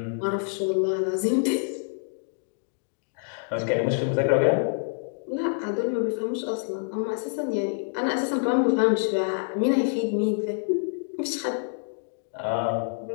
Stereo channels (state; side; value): silent; right; digital silence